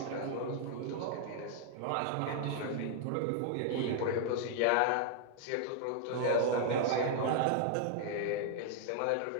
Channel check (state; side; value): different; both; correlation 0.00